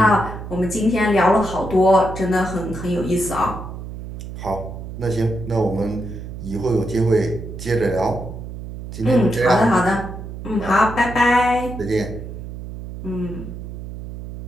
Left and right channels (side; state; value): right; noise; hum, 10 dB below the sound